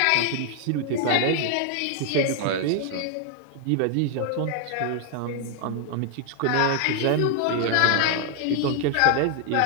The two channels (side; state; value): both; different; correlation 0.00